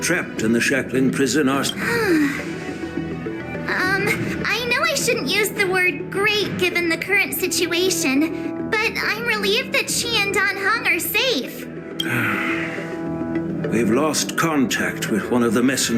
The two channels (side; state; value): both; identical; correlation 1.00